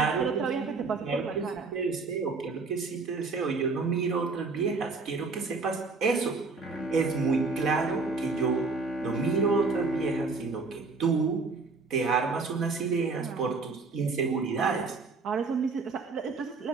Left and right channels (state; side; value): quieter; left; 4.1 dB